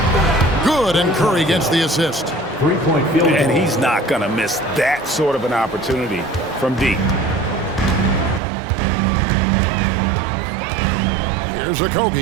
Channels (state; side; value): drops out; left; at 8.4 s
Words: Good, and Curry gets the assist. Three-point field goal. And he's not going to miss that sort of an opportunity from deep. Here's